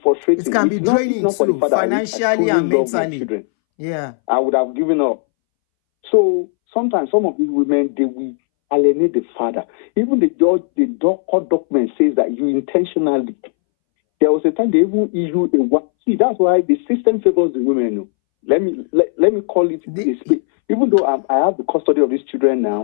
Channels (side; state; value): right; silent; 66 dB below the other